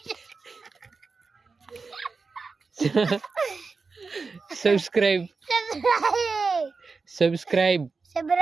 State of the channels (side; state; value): left; quieter; 4.4 dB